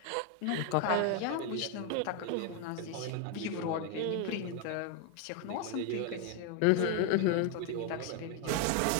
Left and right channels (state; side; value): different; both; correlation 0.01